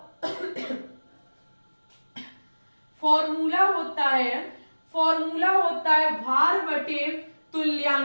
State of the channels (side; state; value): both; inverted; correlation -1.00